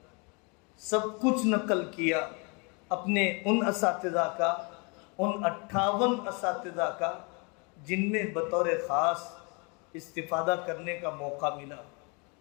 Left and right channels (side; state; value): right; quieter; 32.1 dB